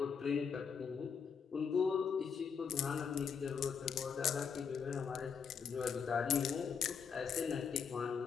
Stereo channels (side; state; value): right; quieter; 6.6 dB